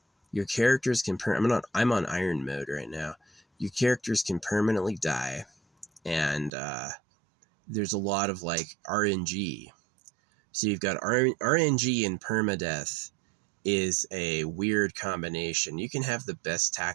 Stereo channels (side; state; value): left; drops out; at 6.5 s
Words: Your characters can I'm on iron mode right now. Your characters can permanently die, and there's a lot of like RNG. So you've got RNG and permadeath is a weird combination. You can have the best